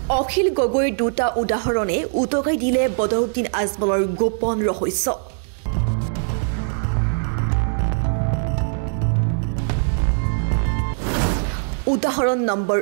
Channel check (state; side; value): silent; left; digital silence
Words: অখিল গগৈৰ দুটা উদাহৰণে উটকাই দিলে বদৰুদ্দিন আজমলৰ গোপন ৰহস্য। উদাহৰণ নম্বৰ